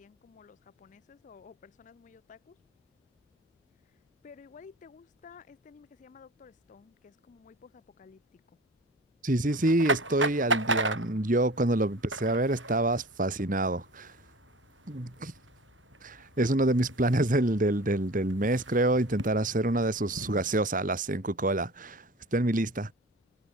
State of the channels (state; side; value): normal; both; correlation 0.38